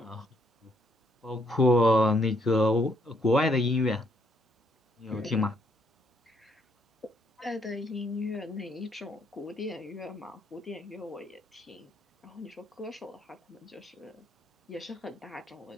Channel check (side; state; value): both; normal; correlation 0.71